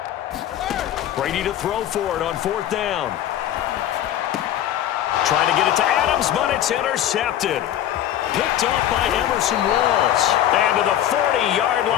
Brady to throw for it on 4th down. Trying to get it to Adams, but it's intercepted. Picked off by Emerson Walls. And to the 40-yard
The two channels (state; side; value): quieter; right; 11.5 dB